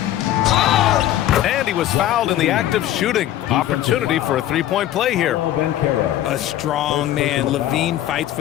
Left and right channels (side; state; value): right; quieter; 13.0 dB